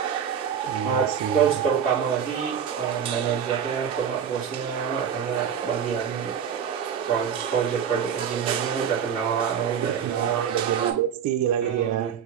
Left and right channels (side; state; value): left; quieter; 7.9 dB